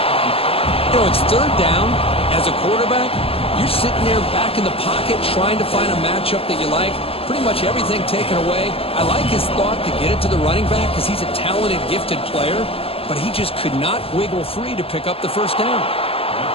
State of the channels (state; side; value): late; right; 0.28 ms